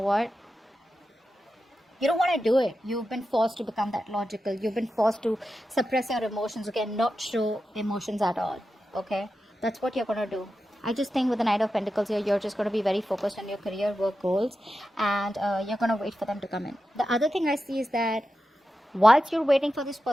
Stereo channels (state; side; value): normal; both; correlation 0.91